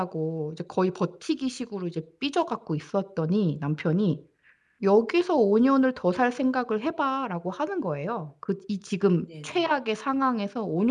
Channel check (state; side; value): identical; both; correlation 1.00